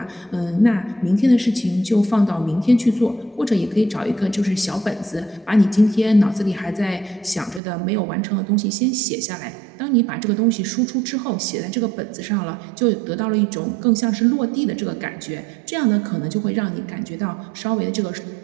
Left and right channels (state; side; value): drops out; left; at 7.6 s